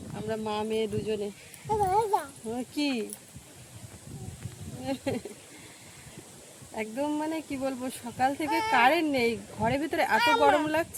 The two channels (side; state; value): both; identical; correlation 1.00